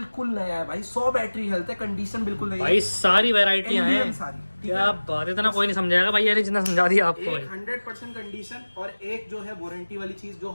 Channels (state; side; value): inverted; both; correlation -1.00